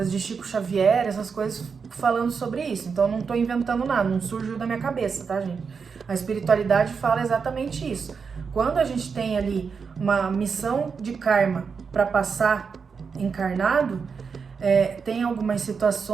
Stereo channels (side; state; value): left; quieter; 5.7 dB